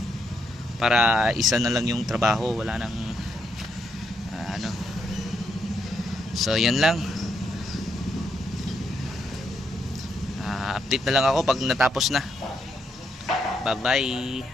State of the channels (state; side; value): normal; both; correlation 0.78